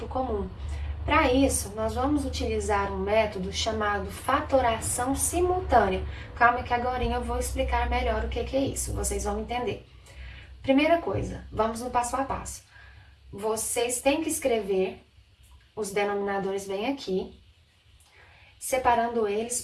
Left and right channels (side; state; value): both; identical; correlation 1.00